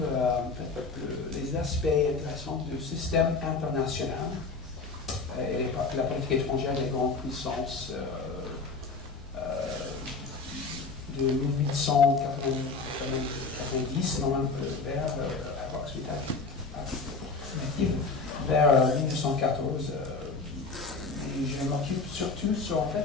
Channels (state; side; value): quieter; right; 4.2 dB